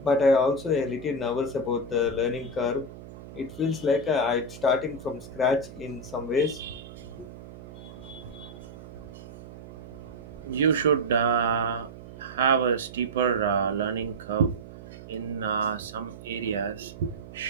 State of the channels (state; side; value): noise; right; hum, 15 dB below the sound